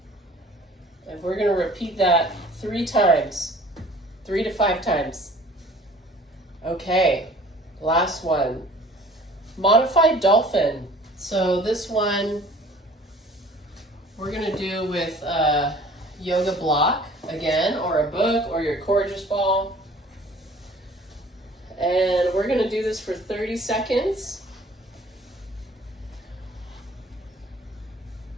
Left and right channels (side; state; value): both; normal; correlation 0.51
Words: And we're going to repeat that 3 times, 3 to 5 times. Okay, last one. Modified dolphin. So this one we're going to do with a yoga block again, or a book, or your Courageous ball. And we're going to do this for 30 seconds.